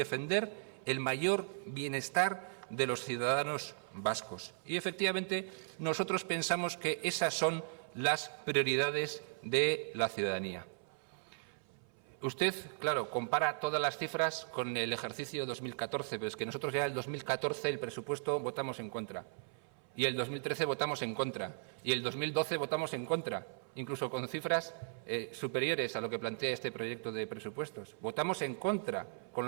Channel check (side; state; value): left; silent; 53 dB below the other